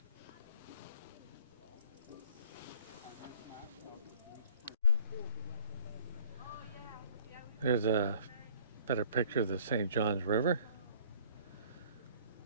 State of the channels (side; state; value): both; inverted; correlation -0.53